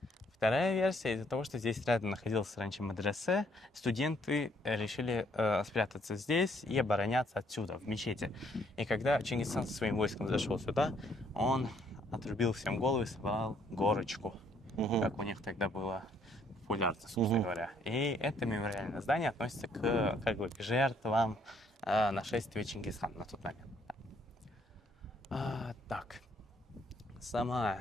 Вторая версия, из-за того, что здесь рядом находился раньше мадресе, студенты решили спрятаться здесь и обороняться отсюда, в мечети. И когда Чингисхан со своим войском зашел сюда, он отрубил всем головы и собрал горочку, как у них тогда было популярно, собственно говоря. И это мемориальное здание относится к жертвам нашествия Чингисхана на тот момент. Так, сама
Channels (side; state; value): both; normal; correlation 0.67